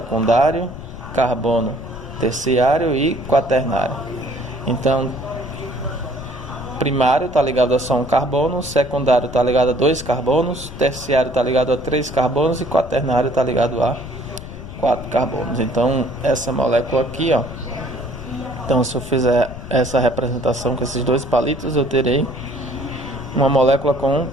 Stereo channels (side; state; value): left; noise; rumble, 12 dB below the sound